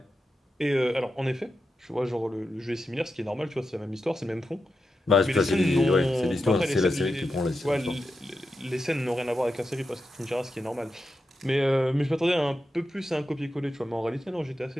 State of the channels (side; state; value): both; normal; correlation 0.89